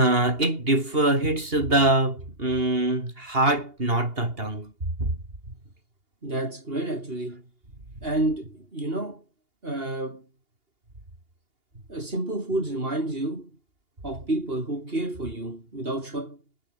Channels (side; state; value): left; late; 2.8 ms